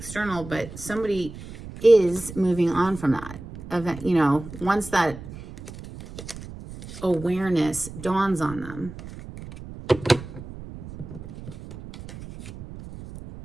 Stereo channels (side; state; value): right; noise; rumble, 13 dB below the sound